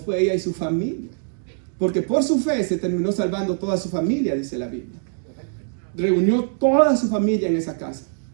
ella y su familia. Porque por su fe se terminó salvando toda su familia, dice la Biblia. Reunió toda su familia en esa casa.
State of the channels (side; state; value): left; silent; digital silence